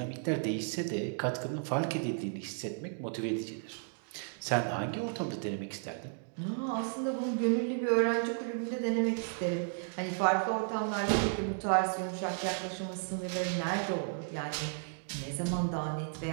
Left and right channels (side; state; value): left; silent; 55 dB below the other